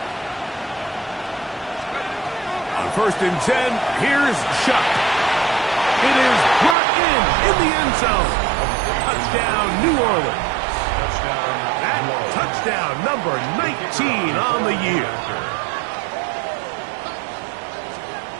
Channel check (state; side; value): drops out; left; at 6.8 s